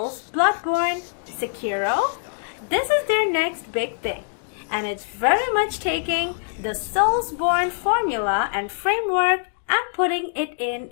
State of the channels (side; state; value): right; silent; digital silence